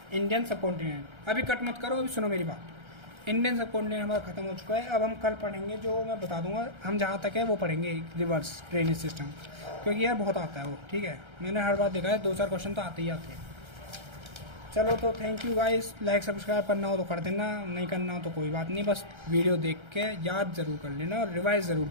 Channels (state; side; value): late; left; 1.3 ms